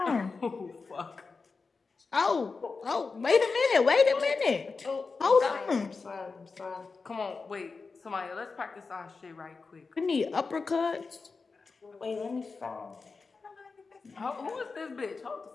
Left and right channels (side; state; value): right; quieter; 4.4 dB